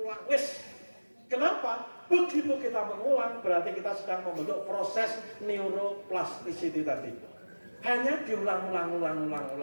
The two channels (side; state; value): both; inverted; correlation -1.00